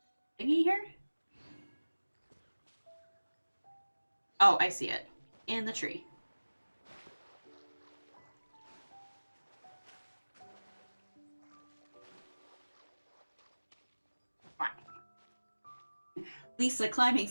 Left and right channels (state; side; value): inverted; both; correlation -1.00